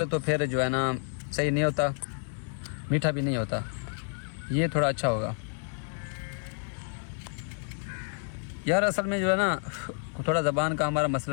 तो फिर जो है ना सही नहीं होता, मीठा भी नहीं होता। ये थोड़ा अच्छा होगा यार। असल में जो है ना थोड़ा ज़बान का हमारा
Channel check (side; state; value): right; silent; digital silence